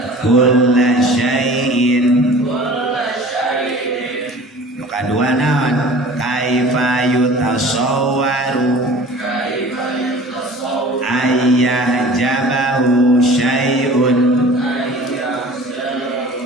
kulla syai'in. Nu kadua naon? Kaifa yutasawwaru ayah jabahu syai'un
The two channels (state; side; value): normal; both; correlation 0.44